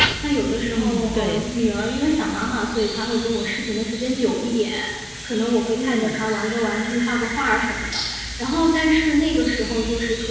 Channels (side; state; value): both; identical; correlation 1.00